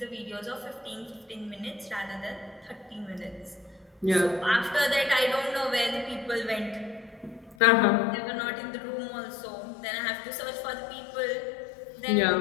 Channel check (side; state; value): right; drops out; at 7.6 s